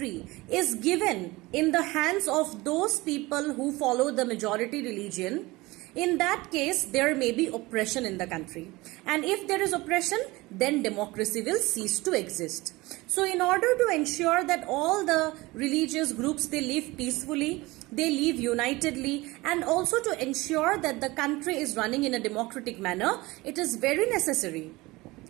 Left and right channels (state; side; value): quieter; left; 21.3 dB